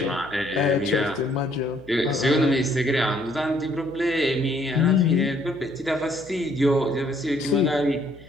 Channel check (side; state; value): left; noise; hum, 22 dB below the sound